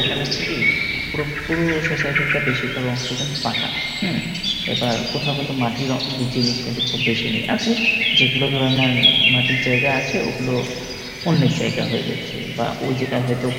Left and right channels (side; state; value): both; identical; correlation 1.00